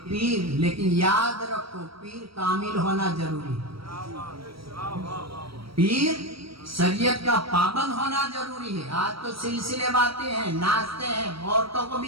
पीर, लेकिन याद रखो पीर कामिल होना जरूरी है। पीर शरीयत का पाबंद होना जरूरी है। आज तो सिलसिले बातें हैं, नाचते हैं, औरतों को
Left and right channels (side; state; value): left; late; 0.75 ms